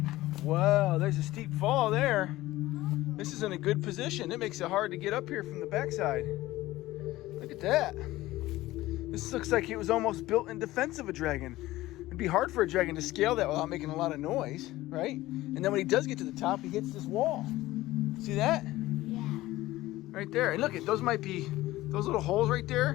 Wow, there's a steep fall there. This is in a good position. It makes it hard to get up here from the backside. Look at that. This looks like it was almost built in defense of a dragon. It'd be hard for a dragon to scale that without making a lot of noise, right? And then when he does get to the top, he hits this wall. See that? Yeah. Right there. And look, those might be, those little holes right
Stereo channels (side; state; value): right; quieter; 17.2 dB